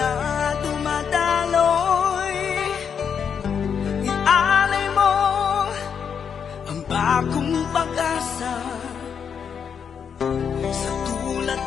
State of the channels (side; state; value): right; quieter; 7.2 dB